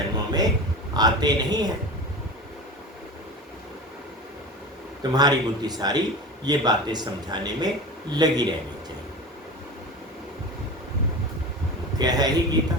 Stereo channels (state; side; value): normal; both; correlation 0.31